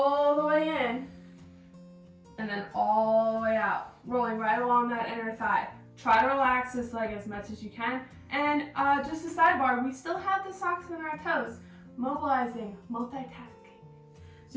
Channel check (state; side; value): identical; both; correlation 1.00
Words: the way in and then all the way out, rolling right along that inner thigh. Try to relax this leg as much as you can. And just a sidebar, we still have the socks on our toes, mobilizing, multitasking.